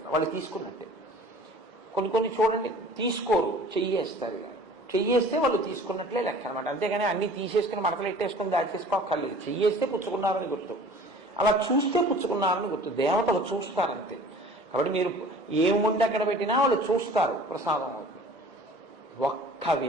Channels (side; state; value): both; normal; correlation 0.46